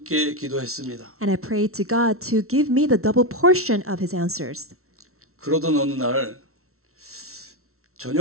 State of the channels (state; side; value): late; left; 0.63 ms